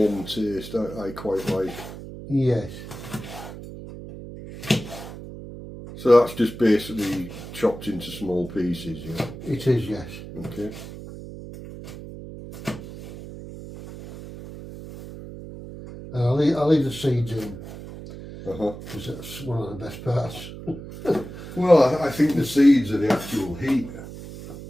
taste. I quite like. Yes. So that's just basically chopped into small pieces, yeah. It is, yes. Okay. And I'll leave the seeds in, Uh-huh. because that's one of the best parts. Well, I think the seeds are the actual heat,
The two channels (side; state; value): right; noise; hum, 12 dB below the sound